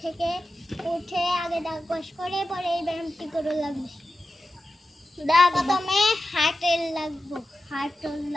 থেকে উঠে আগে দাঁত ব্রাশ করে পরে এই ব্যায়ামটি করে লাগবে। প্রথমে হাঁটল লাগবো,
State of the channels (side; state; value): both; normal; correlation 0.93